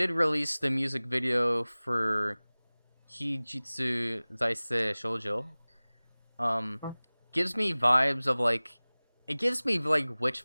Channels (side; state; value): both; inverted; correlation -1.00